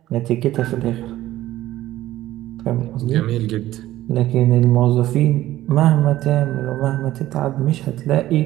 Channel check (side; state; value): left; quieter; 14.8 dB